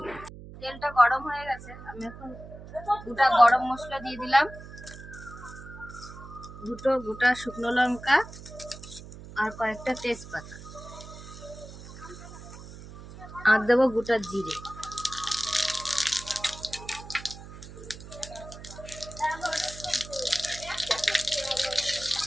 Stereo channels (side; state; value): right; noise; hum, 15 dB below the sound